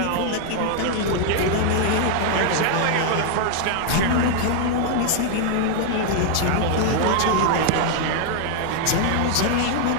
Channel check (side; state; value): both; different; correlation 0.00